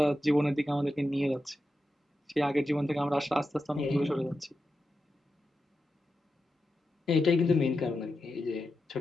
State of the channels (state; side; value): normal; both; correlation 0.90